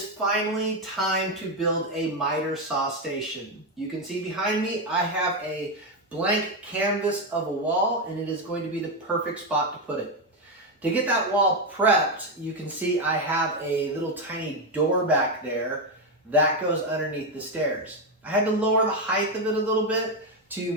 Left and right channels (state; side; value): normal; both; correlation 0.08